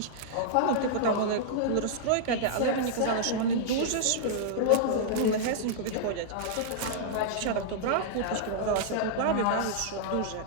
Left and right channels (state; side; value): different; both; correlation -0.02